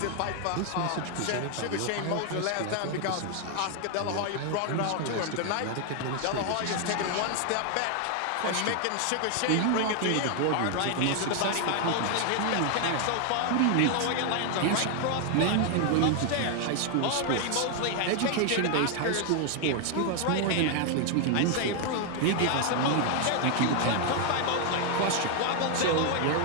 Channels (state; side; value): different; both; correlation 0.00